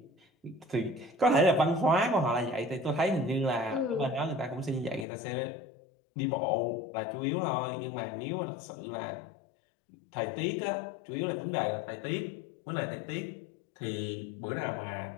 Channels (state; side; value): drops out; right; at 5.1 s